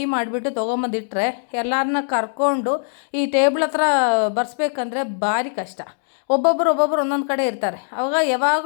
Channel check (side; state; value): right; silent; digital silence